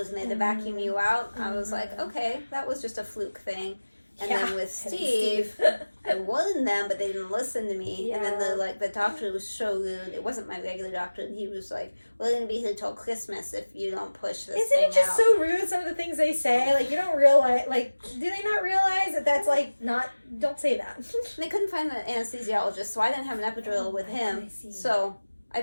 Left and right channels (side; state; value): both; inverted; correlation -1.00